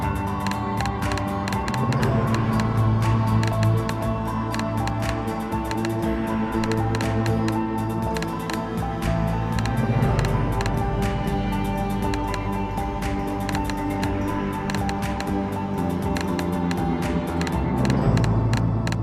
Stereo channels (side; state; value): both; identical; correlation 1.00